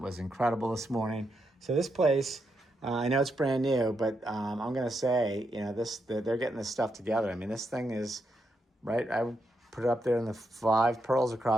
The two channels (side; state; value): both; normal; correlation 0.82